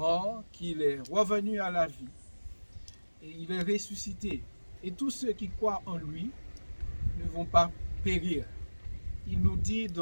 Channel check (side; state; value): both; inverted; correlation -1.00